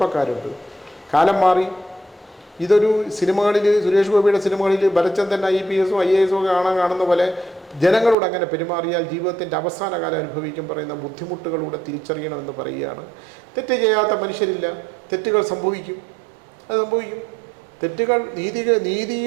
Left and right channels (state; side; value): drops out; left; at 8.2 s